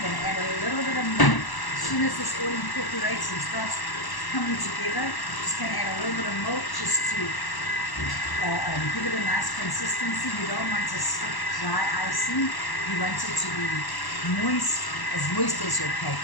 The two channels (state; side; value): late; right; 1.0 ms